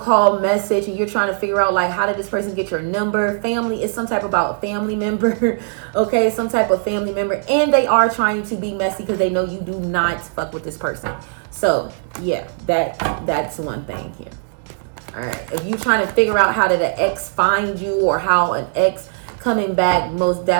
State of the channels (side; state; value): left; silent; digital silence